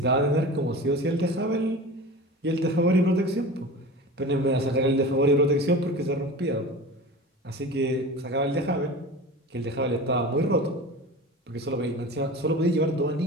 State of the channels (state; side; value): normal; both; correlation 0.34